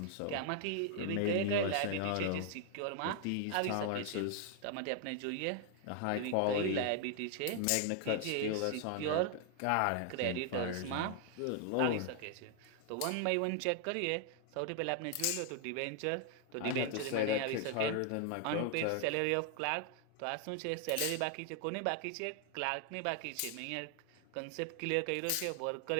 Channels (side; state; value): both; different; correlation 0.00